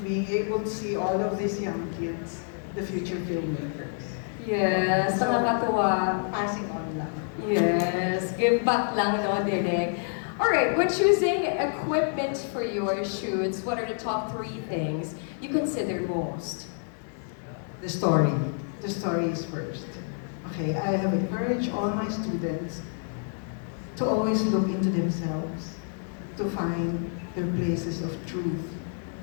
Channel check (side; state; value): right; silent; 56 dB below the other